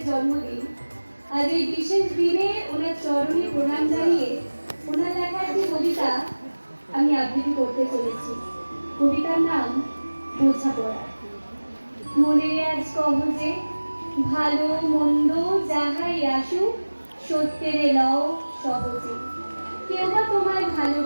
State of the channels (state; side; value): inverted; both; correlation -1.00